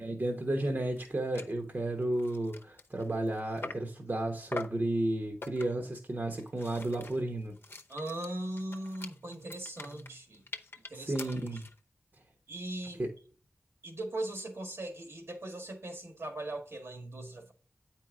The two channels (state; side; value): normal; both; correlation 0.88